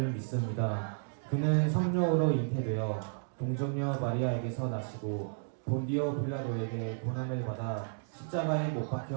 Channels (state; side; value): silent; left; digital silence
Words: 믿습니다. 그는 성령으로 잉태되어 동정녀 마리아에게서 나시고 본디오 빌라도에게 고난을 받아 십자가에 못